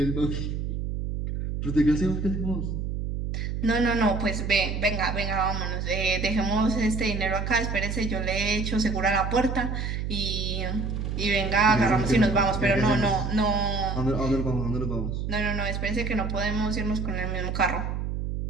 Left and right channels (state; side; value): noise; right; hum, 3 dB below the sound